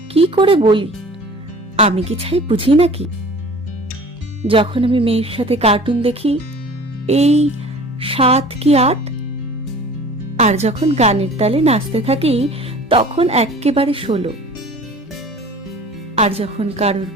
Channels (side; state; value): both; normal; correlation 0.44